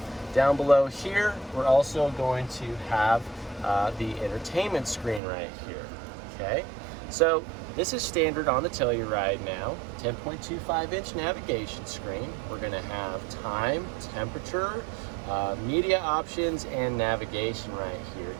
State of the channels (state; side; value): drops out; left; at 5.2 s